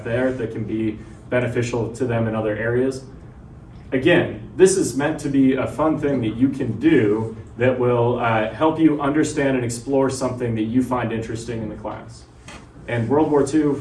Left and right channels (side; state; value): both; identical; correlation 1.00